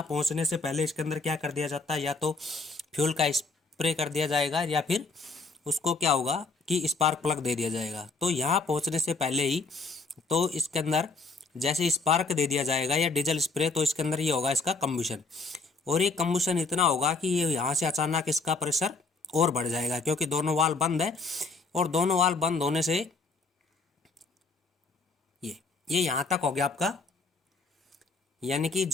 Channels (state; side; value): quieter; right; 3.9 dB